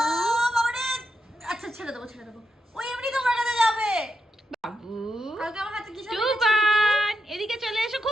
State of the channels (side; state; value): both; normal; correlation 0.84